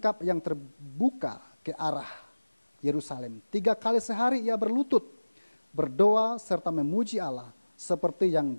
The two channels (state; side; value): inverted; both; correlation -1.00